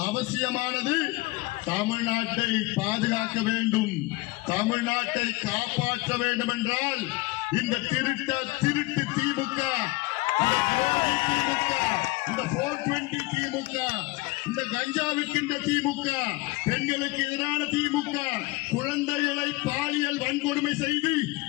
அவசியமானது. தமிழ்நாட்டை பாதுகாக்க வேண்டும், தமிழ்நாட்டை காப்பாற்ற வேண்டும் என்றால் இந்த திருட்டு திமுக, இந்த துரோகி திமுக, இந்த 420 திமுக, இந்த கஞ்சா விற்கின்ற திமுக, பெண்களுக்கு எதிரான திமுக, குழந்தைகளை பாலியல் வன்கொடுமை செய்து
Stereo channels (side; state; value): right; quieter; 21.6 dB